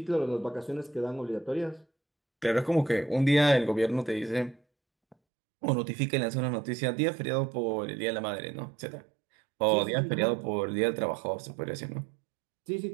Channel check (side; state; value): left; drops out; at 5.2 s